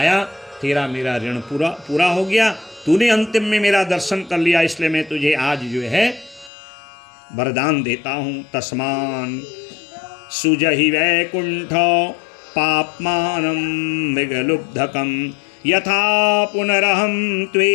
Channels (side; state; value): right; drops out; at 6.5 s